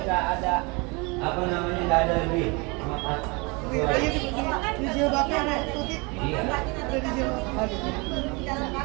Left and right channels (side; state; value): left; quieter; 28.1 dB